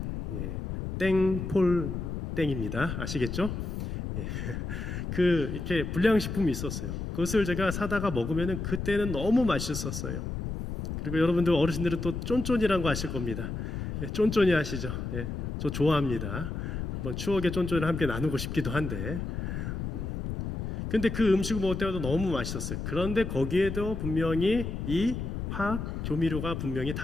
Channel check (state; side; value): noise; left; rumble, 4 dB below the sound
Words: 땡폴 땡입니다. 아시겠죠? 이렇게 불량식품이 있었어요. 그것을 제가 사다가 먹으면 그때는 너무 맛있었어요. 그리고 여러분들 어르신들은 또 쫀쫀이라는 거 아실 겁니다. 쫀쫀이 아시죠? 저 좋아합니다. 한번 추억의 쫀쫀을 함께 나누고 싶기도 한데, 근데 그 음식을 먹을 때마다 너무 맛있었어요. 그런데 거기에도 분명히 이 화학 조미료가 분명히